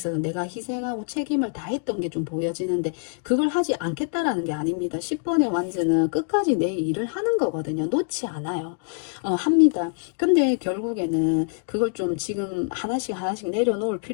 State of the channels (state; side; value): silent; right; 62 dB below the other